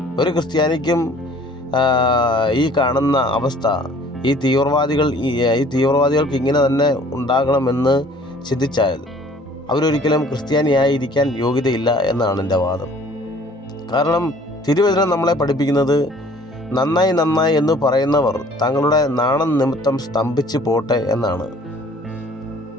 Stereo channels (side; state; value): both; normal; correlation 0.54